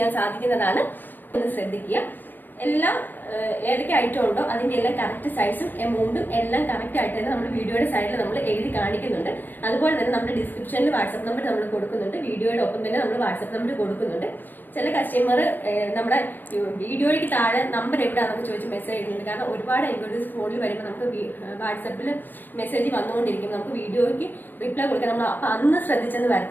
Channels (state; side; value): late; right; 0.090 ms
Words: സാധിക്കുന്നതാണ്. ഒന്ന് ശ്രദ്ധിക്കുക. എല്ലാം ഏതൊക്കെ ഐറ്റം ഉണ്ടോ അതിന്റെ എല്ലാം കറക്റ്റ് സൈസും എമൗണ്ടും എല്ലാം കറക്റ്റ് ആയിട്ട് തന്നെ നമ്മൾ വീഡിയോയുടെ സൈഡിൽ നമ്മൾ എഴുതി കാണിക്കുന്നുണ്ട്. അതുപോലെ തന്നെ നമ്മുടെ ഡിസ്ക്രിപ്ഷനിൽ വാട്സ്ആപ്പ് നമ്പർ നമ്മൾ കൊടുക്കുന്നുണ്ട്. വീഡിയോയുടെ ഒപ്പം തന്നെ നമ്മൾ വാട്സ്ആപ്പ് നമ്പർ കൊടുക്കുന്നുണ്ട്. ചില കസ്റ്റമർ നമ്മുടെ വീഡിയോയ്ക്ക് താഴെ നമ്പർ എവിടെയാണെന്നൊക്കെ ചോദിച്ച് മെസ്സേജ് ചെയ്യുന്നുണ്ട്. കാരണം ഒരുപാട് എൻക്വയറീസ് ഫോണിൽ വരുമ്പോൾ നമുക്ക് വാട്സാപ്പിൽ മെസ്സേജ് വന്നുകൊണ്ടിരിക്കും. നമുക്ക് വീഡിയോയ്ക്ക് റിപ്ലൈ കൊടുക്കാൻ നമ്മൾ അപ്പൊ അന്ന് ശ്രദ്ധിച്ചെന്ന്